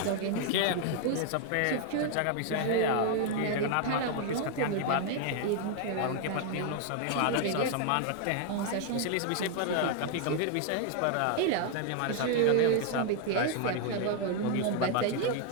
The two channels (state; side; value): different; both; correlation 0.00